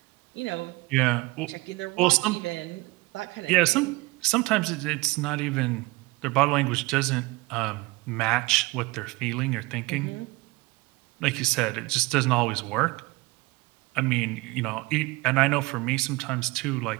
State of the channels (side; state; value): left; quieter; 22.9 dB